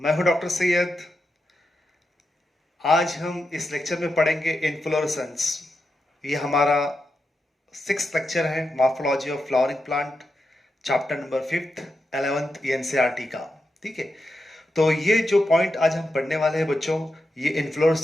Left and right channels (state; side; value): normal; both; correlation 0.87